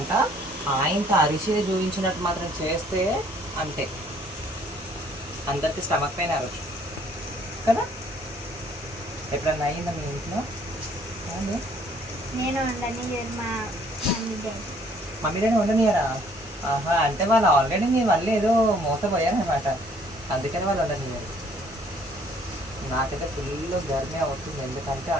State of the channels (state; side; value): normal; both; correlation 0.61